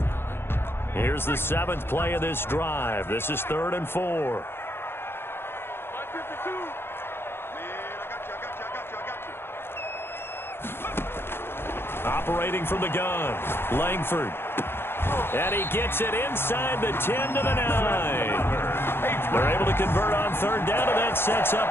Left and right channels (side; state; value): right; late; 0.11 ms